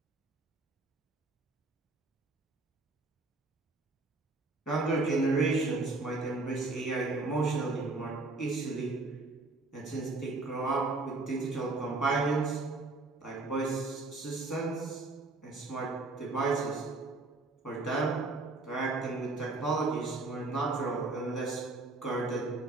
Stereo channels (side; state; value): left; quieter; 3.2 dB